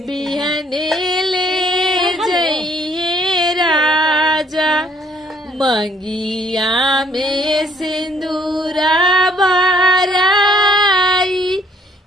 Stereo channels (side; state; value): both; normal; correlation 0.63